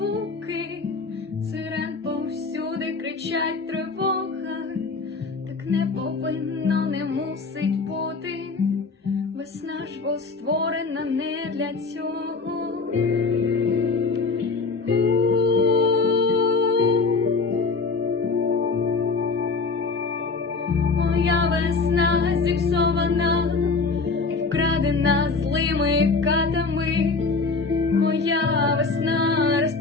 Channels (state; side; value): quieter; right; 4.2 dB